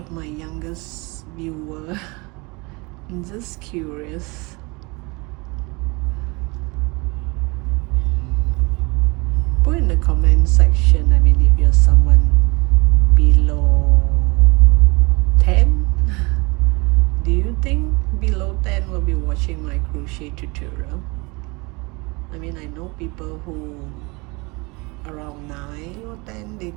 my youngest viewer. I'm just curious. Put in the comment section, I mean, if you're someone below 10, do you think below 10 will be watching my crochet tutorial? I mean, I know people who around 9 or 10, they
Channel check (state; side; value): quieter; left; 27.0 dB